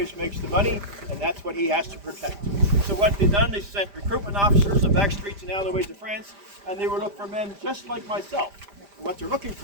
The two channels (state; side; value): late; left; 5.0 ms